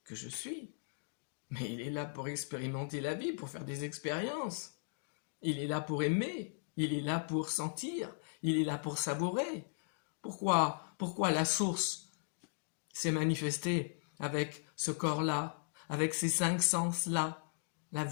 que je suis, mais il est là pour expérimenter la vie, pour faire des expériences. Il est là pour aimer, il est là pour sentir, il est là pour savourer. Pourquoi la source s'est manifestée avec ce corps-là, avec ces 5 sens-là, la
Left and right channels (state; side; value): silent; right; digital silence